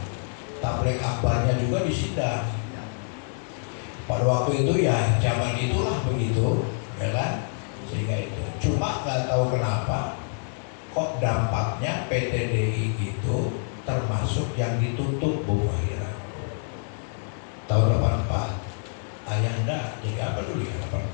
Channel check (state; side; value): silent; right; 61 dB below the other